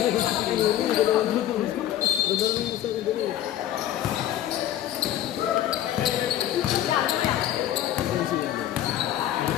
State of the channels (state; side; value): quieter; right; 12.1 dB